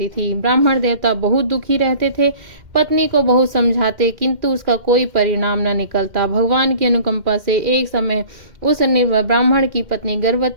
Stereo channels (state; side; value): late; left; 2.1 ms